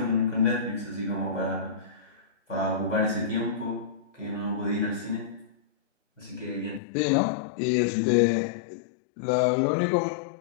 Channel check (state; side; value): drops out; right; at 6.8 s